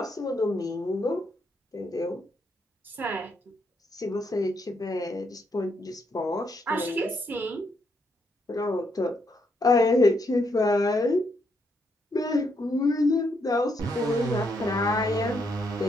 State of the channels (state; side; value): normal; both; correlation 0.76